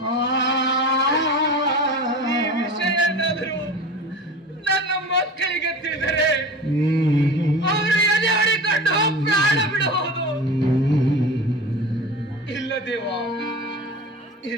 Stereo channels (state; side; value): normal; both; correlation 0.33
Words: ಈ ವಿಷಯ ಏನಾದರೂ ನನ್ನ ಮಕ್ಕಳಿಗೆ ತಿಳಿದರೆ ಅವರು ಎದೆ ಹೊಡಿಕೊಂಡು ಪ್ರಾಣ ಬಿಡಬಹುದು. ಇಲ್ಲ ದೇವ,